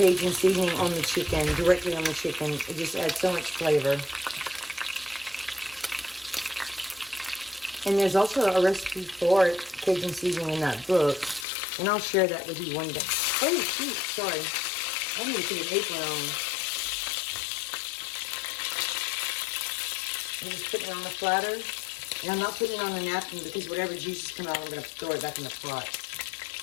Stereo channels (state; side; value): drops out; right; at 11.5 s